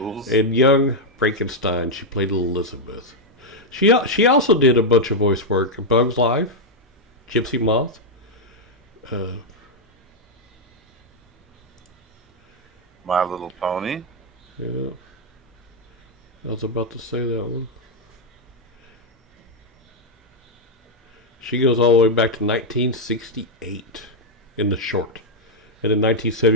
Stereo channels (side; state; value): both; normal; correlation 0.00